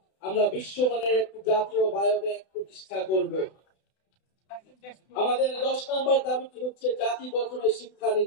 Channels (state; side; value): late; right; 32 ms